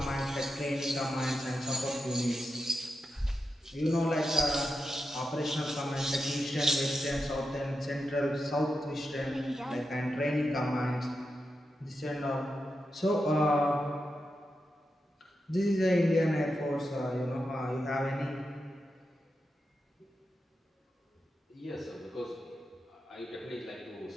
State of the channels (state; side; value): normal; both; correlation 0.88